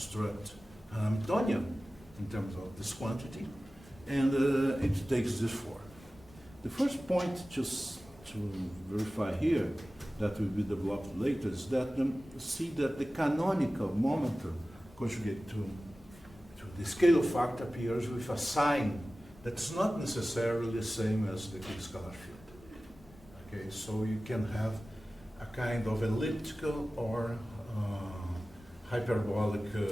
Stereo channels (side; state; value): both; normal; correlation 0.96